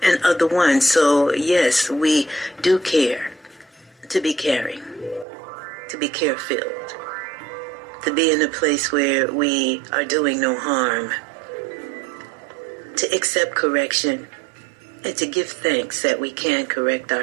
and other ones. So yes, we do care to be caring, to be care-filled, to be in a place where we are doing no harm, to accept correction, and to give thanks that we can correct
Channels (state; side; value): drops out; left; at 5.2 s